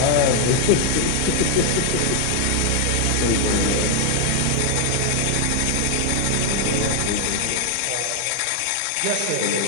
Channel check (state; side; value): different; both; correlation 0.00